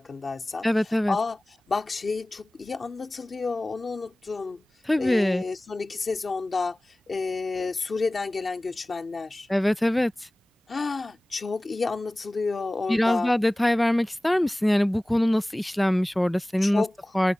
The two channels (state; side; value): normal; both; correlation 0.98